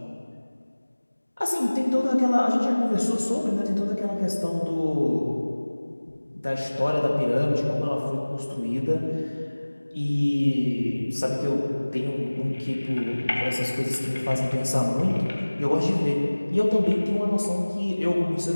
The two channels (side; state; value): both; inverted; correlation -1.00